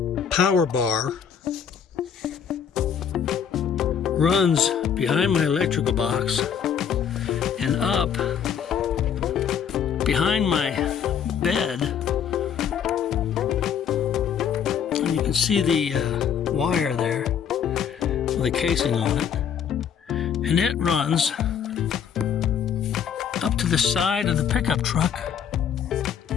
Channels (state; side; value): quieter; right; 7.9 dB